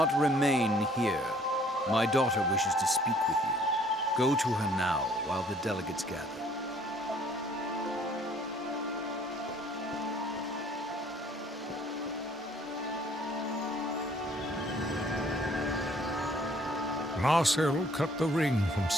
remain here. My daughter wishes to speak with you. Go to her now while the delegates gather. Narsil cut the ring from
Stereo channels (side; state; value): both; normal; correlation 0.59